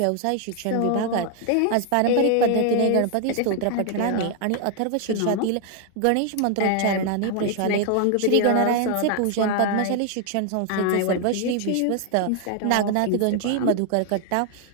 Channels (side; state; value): both; different; correlation 0.00